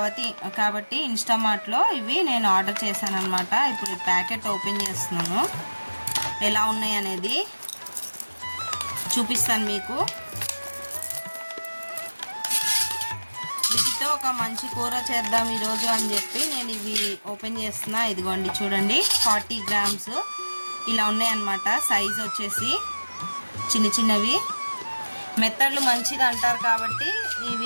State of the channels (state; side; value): inverted; both; correlation -1.00